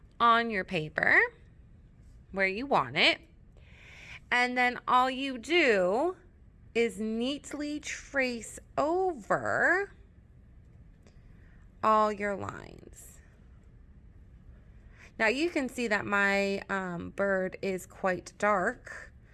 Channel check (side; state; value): both; identical; correlation 1.00